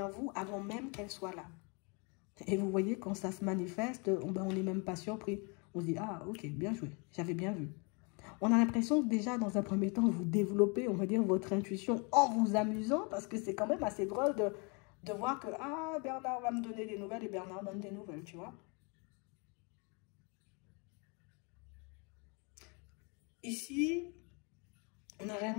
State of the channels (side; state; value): right; quieter; 32.9 dB